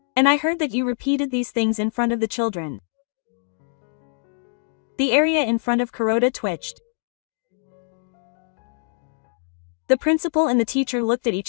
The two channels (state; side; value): silent; right; digital silence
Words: And I heard that you repeated these things in front of the children. The area in front of Kuroda twitched. The principal and the teacher looked at